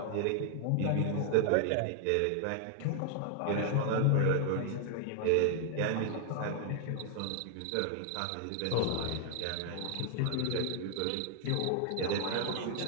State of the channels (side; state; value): both; different; correlation 0.00